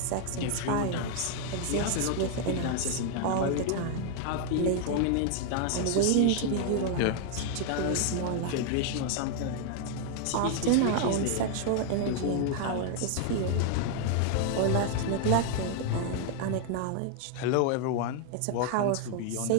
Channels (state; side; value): different; both; correlation 0.00